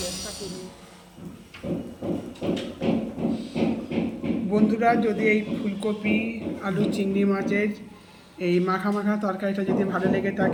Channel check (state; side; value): identical; both; correlation 1.00